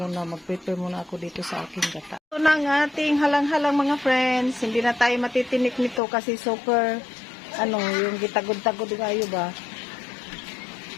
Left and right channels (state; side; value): drops out; right; at 6.0 s